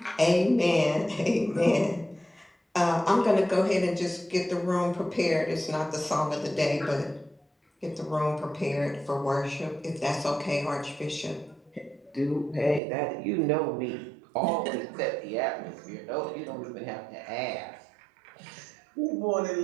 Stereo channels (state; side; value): drops out; left; at 12.8 s